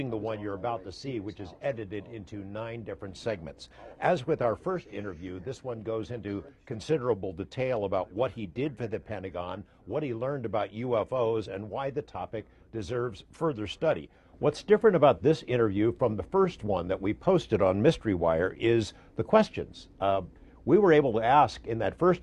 the one you're about to see, which is edited into 9 different segments. As with our first interview, this one goes into considerable detail about what he did for the Pentagon, what he learned about UFOs, and why the topic deserves further study. What's different about this interview from the first one that we posted on Mystery Wire is the questions. We were able to ask in that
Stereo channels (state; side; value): identical; both; correlation 1.00